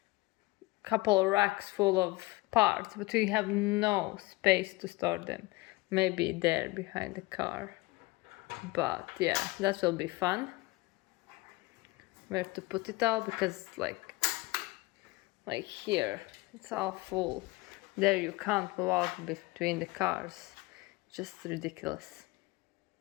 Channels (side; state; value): right; quieter; 21.9 dB